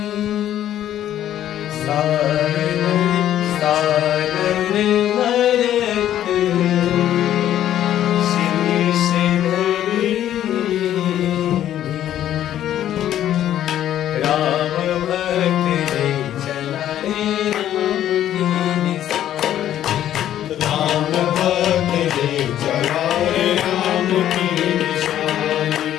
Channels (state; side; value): quieter; right; 11.6 dB